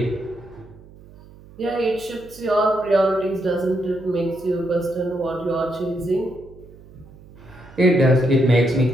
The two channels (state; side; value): noise; right; hum, 22 dB below the sound